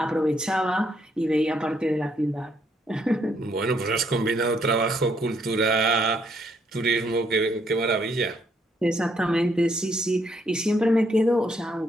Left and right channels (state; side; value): normal; both; correlation 0.72